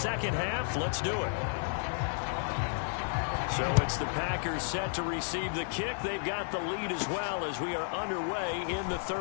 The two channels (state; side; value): silent; right; 56 dB below the other